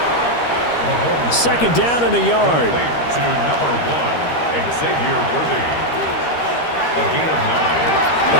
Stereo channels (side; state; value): right; late; 13 ms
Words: 2nd down and a yard. To number 1, Xavier Worthy. A gain of 9.